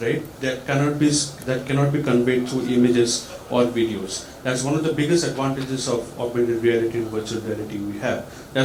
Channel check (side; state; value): both; identical; correlation 1.00